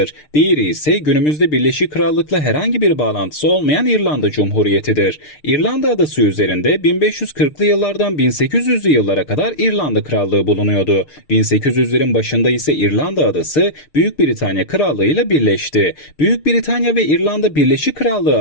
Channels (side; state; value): right; late; 6.6 ms